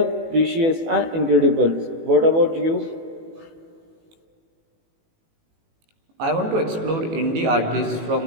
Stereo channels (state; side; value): late; left; 18 ms